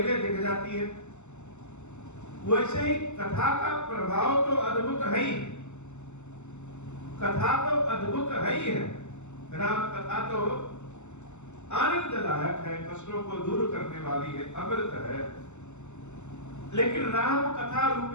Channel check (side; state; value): right; late; 0.83 ms